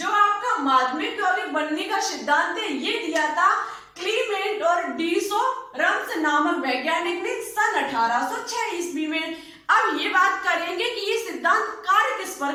आपका माध्यमिक यौगिक बनने का सिद्धांत है ये दिया था क्लीमेंट और डीसोरम्स नामक वैज्ञानिक ने सन 1806 ईस्वी में। अब ये बात करेंगे कि ये सिद्धांत कार्य किस पर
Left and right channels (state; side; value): identical; both; correlation 1.00